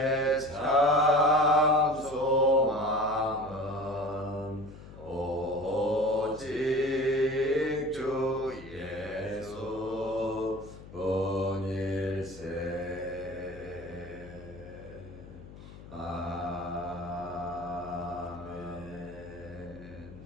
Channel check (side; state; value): left; noise; hum, 16 dB below the sound